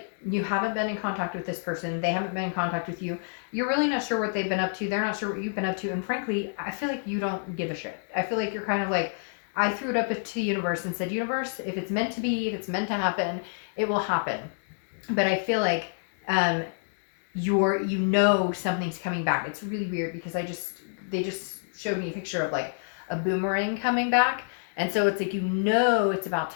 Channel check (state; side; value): silent; right; digital silence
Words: you haven't been in contact with this person. They haven't been in contact with you. You're really not sure what they've been up to. They're not sure what you've been up to. And frankly, I feel like you don't give a shit. I feel like you're kind of like, I threw it up to the universe and said, universe, if it's meant to be, if it's meant to happen, it will happen. But I feel like you know something's coming back. It's really weird because they just showed me a picture of like a boomerang coming back, and so it's like, you know, it's about